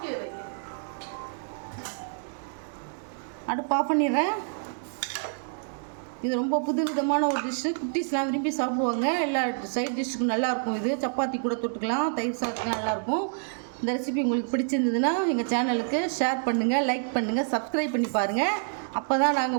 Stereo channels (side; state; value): left; silent; digital silence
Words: அடுப்பு ஆஃப் பண்ணிடுறேன். இது ரொம்ப புது விதமான ஒரு டிஷ்ஷு. குட்டீஸ்லாம் விரும்பி சாப்பிடுவாங்க. எல்லா சைட் டிஷ்ஷுக்கும் நல்லாயிருக்கும். இது சப்பாத்தி கூட தொட்டுக்கலாம், தயிர் சாதத்துலாம் நல்லாயிருக்கும். இந்த ரெசிபி உங்களுக்கு பிடிச்சிருந்ததுன்னா எங்கள் சேனலுக்கு ஷேர் பண்ணுங்கள், லைக் பண்ணுங்கள், சப்ஸ்கிரைப் பண்ணி பாருங்கள். அப்போ தான்